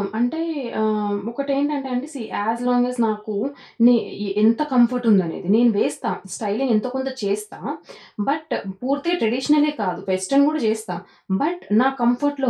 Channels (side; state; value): both; identical; correlation 1.00